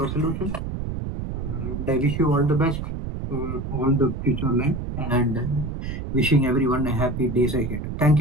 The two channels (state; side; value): noise; right; rumble, 5 dB below the sound